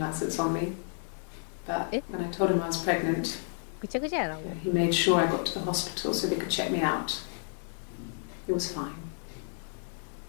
on me. But when I told him I was pregnant, he made sure I got to the hospital so they could check me out. It was fine.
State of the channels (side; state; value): right; silent; 56 dB below the other